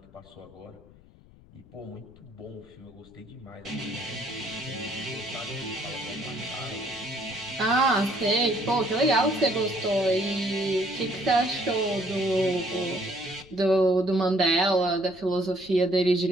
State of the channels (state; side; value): noise; left; rumble, 25 dB below the sound